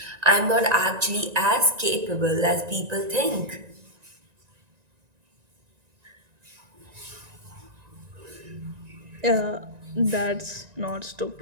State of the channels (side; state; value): left; late; 1.9 ms